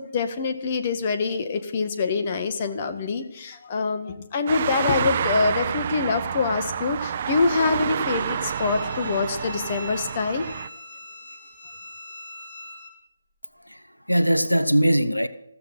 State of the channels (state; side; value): inverted; both; correlation -0.77